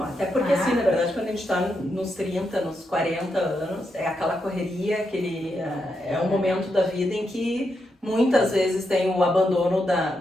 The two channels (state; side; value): normal; both; correlation 0.83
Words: até porque assim, na verdade, quando a gente tá nos 30, nos 40 anos, é aquela correria, é um momento da vida em que muitas vezes tem o abandono